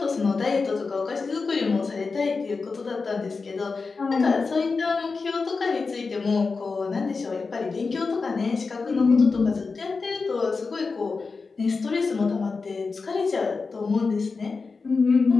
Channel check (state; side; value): quieter; right; 4.4 dB